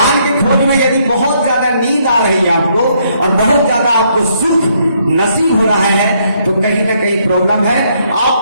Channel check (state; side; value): inverted; both; correlation -0.72